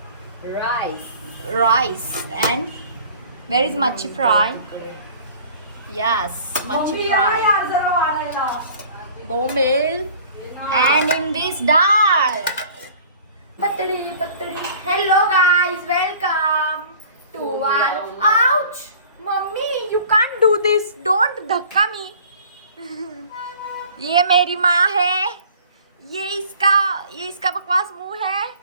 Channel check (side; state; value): both; inverted; correlation -0.48